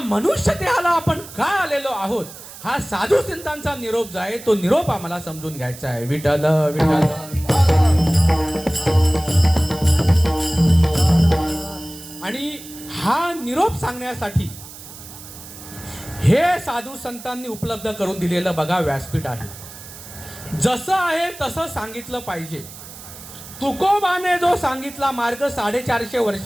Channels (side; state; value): right; noise; hiss, 15 dB below the sound